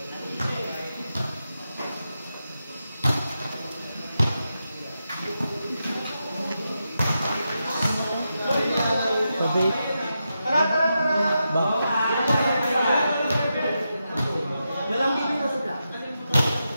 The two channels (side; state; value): both; inverted; correlation -0.87